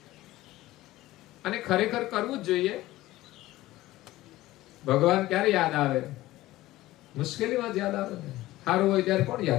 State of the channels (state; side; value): quieter; right; 16.8 dB